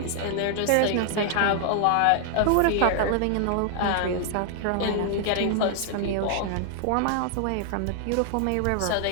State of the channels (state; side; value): different; both; correlation 0.00